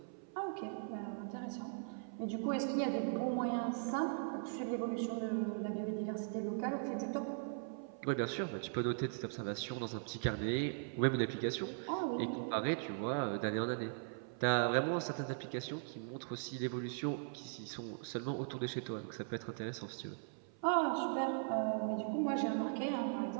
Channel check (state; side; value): silent; left; 51 dB below the other